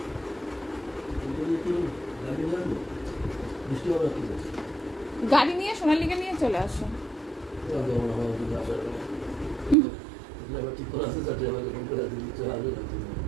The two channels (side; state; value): left; drops out; at 9.8 s